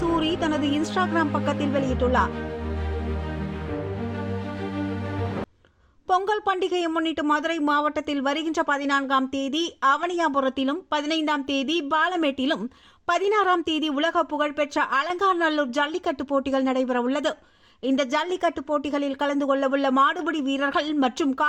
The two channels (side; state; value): both; identical; correlation 1.00